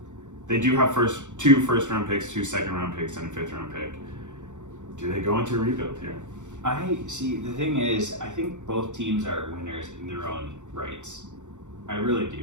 They do have 2 first-round picks, 2 second-round picks, and a 5th-round pick. Do they go into a rebuild here? I see. The thing is, I think both teams are winners in their own rights. I really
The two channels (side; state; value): left; late; 0.85 ms